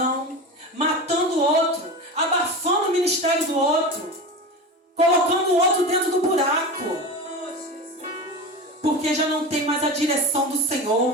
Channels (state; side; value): normal; both; correlation 0.27